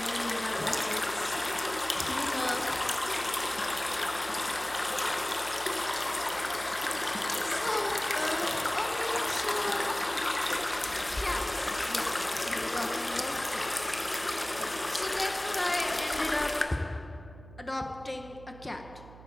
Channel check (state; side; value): noise; right; hum, 18 dB below the sound